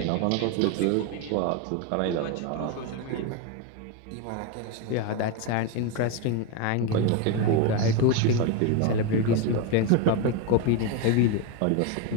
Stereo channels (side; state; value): both; different; correlation 0.03